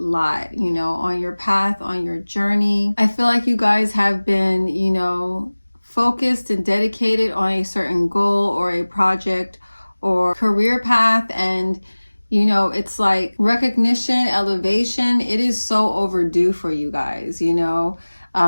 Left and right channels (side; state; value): both; inverted; correlation -1.00